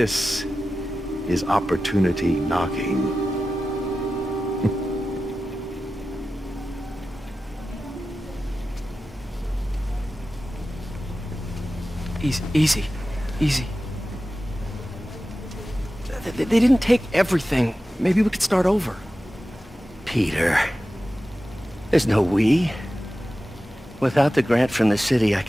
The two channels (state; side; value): normal; both; correlation 0.94